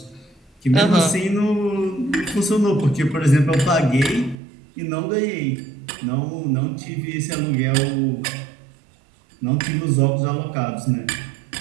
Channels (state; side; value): drops out; left; at 4.4 s